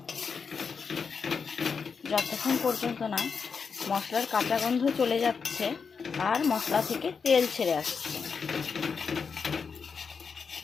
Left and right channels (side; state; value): right; quieter; 5.7 dB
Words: যতক্ষণ পর্যন্ত না মশলার কাঁচা গন্ধ চলে যাচ্ছে আর মশলা থেকে তেল ছেড়ে আসছে।